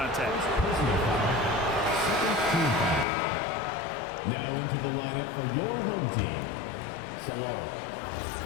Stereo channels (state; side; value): drops out; right; at 3.1 s